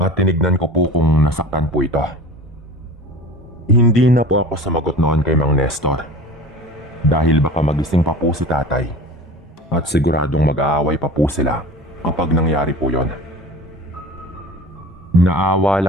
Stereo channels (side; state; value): both; normal; correlation 0.37